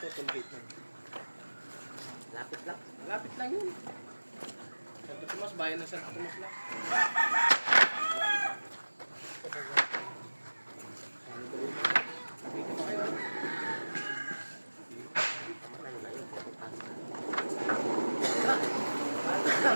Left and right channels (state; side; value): inverted; both; correlation -1.00